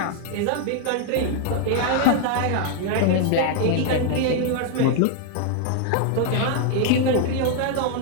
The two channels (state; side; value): different; both; correlation 0.00